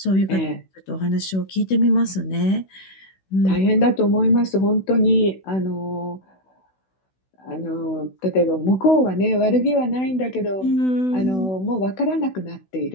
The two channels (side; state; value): right; late; 16 ms